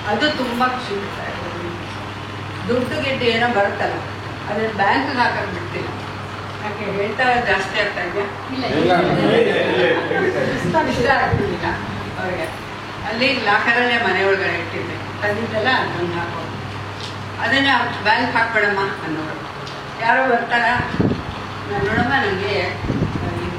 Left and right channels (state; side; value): identical; both; correlation 1.00